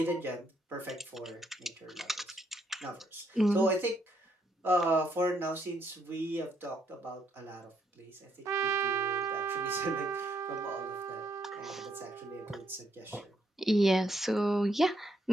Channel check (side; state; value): both; normal; correlation 0.73